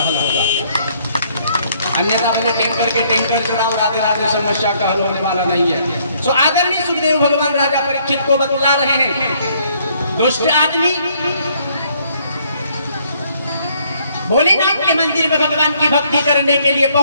हल होगा। अन्यथा मैंने टैंकर के टैंकर चढ़ाओ, राधे राधे, समस्या का हल होने वाला नहीं है। सो आदरणीय सुखदेव भगवान राजा परीक्षित को बतला रहे हैं, दुष्ट आदमी भोलेनाथ के मंदिर में भगवान की भक्ति करने के लिए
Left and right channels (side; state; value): both; inverted; correlation -0.66